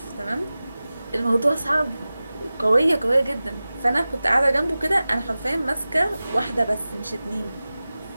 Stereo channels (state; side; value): inverted; both; correlation -0.96